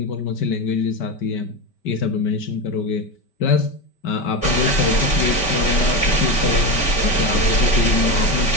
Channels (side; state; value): right; late; 5.2 ms